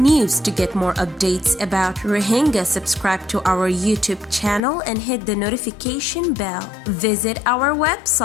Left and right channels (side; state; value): right; drops out; at 4.6 s